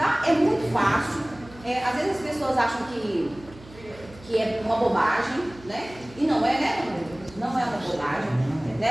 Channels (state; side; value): noise; right; hum, 21 dB below the sound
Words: É muito fácil. Às vezes as pessoas acham que é uma bobagem, né? E não é, né? Não é uma bobagem,